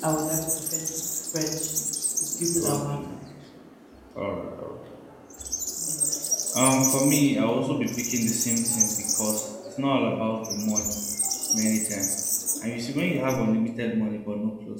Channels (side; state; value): both; identical; correlation 1.00